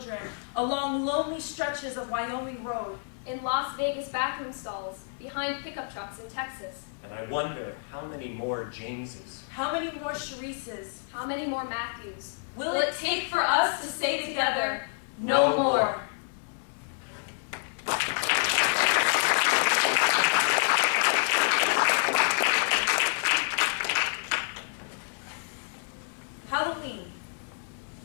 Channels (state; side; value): silent; right; digital silence